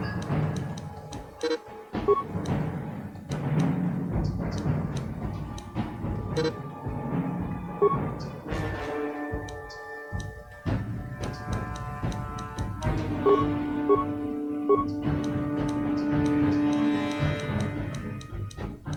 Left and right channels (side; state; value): both; identical; correlation 1.00